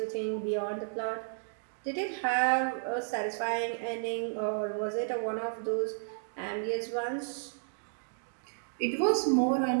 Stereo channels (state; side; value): silent; left; digital silence